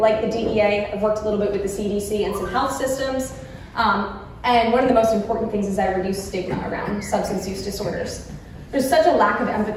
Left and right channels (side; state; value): both; identical; correlation 1.00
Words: the DEA. I've worked a little bit with the CDC and some health systems. And one of the most important things is I reduce stigma around substance use disorders. There's such a lack of